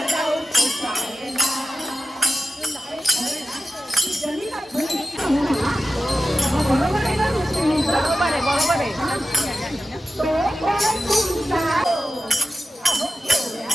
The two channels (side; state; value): both; normal; correlation 0.94